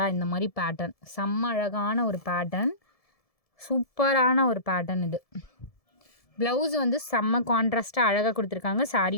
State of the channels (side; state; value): right; late; 1.7 ms